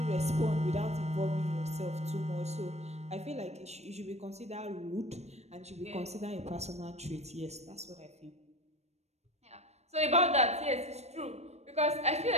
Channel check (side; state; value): left; late; 0.31 ms